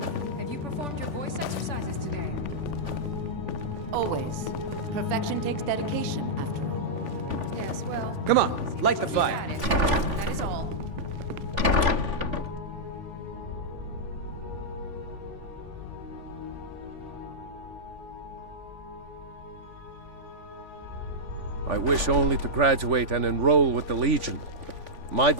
Have you performed your voice exercises today? Always. Perfection takes dedication, after all. Yes, well... Come on, light the fire. That is all. I wish only to graduate and enroll with the Legion. My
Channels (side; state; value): left; late; 3.5 ms